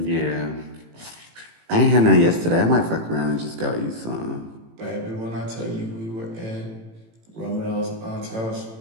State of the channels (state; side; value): late; left; 18 ms